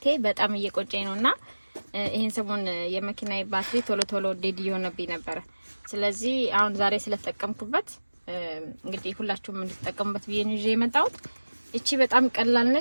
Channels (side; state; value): both; inverted; correlation -1.00